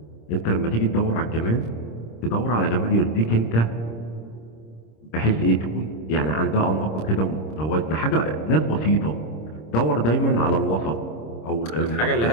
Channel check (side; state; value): right; late; 26 ms